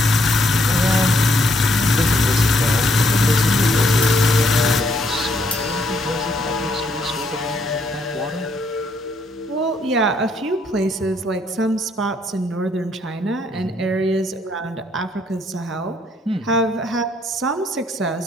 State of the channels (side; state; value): both; normal; correlation 0.71